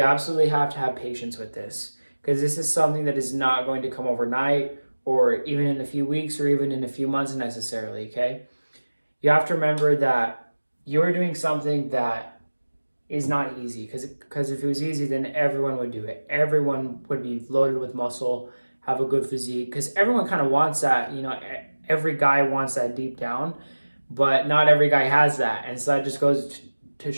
absolutely have to have patience with this, because this is something that is not going to come overnight or even in a few weeks or even in a few months necessarily, okay? You have to remember that you're doing something that is not easy, because if it was easy, then everyone would do it. Everyone would be loaded with muscle, have a good physique, because everyone kind of wants that, you know, every guy wants that deep down, but not every guy has that. And so that just goes to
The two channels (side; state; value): both; inverted; correlation -1.00